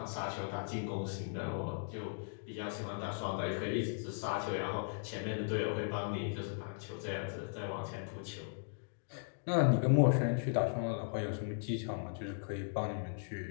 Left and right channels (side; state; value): right; silent; digital silence